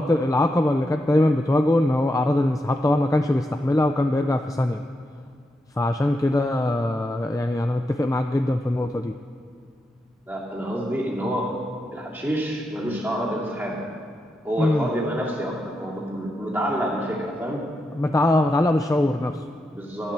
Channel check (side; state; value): both; normal; correlation 0.85